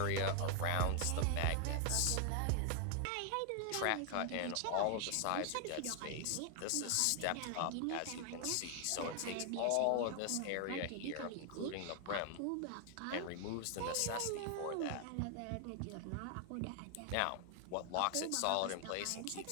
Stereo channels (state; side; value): different; both; correlation 0.00